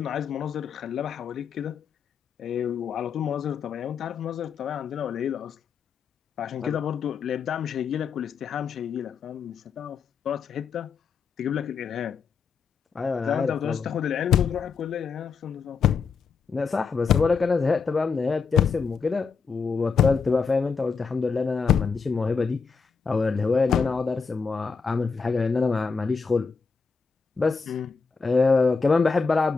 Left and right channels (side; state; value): right; quieter; 5.4 dB